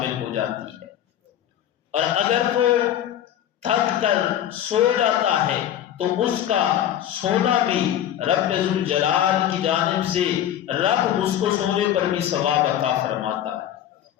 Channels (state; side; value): quieter; right; 11.0 dB